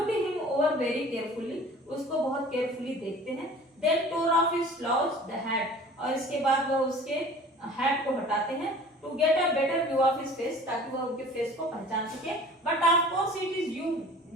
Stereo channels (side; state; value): both; normal; correlation 0.45